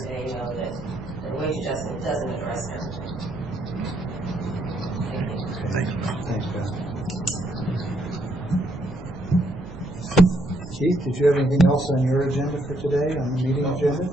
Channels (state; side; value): noise; right; rumble, 15 dB below the sound